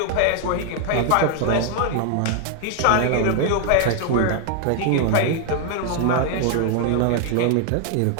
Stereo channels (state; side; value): different; both; correlation 0.00